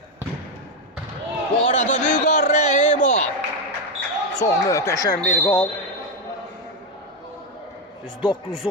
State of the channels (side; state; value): both; normal; correlation 0.06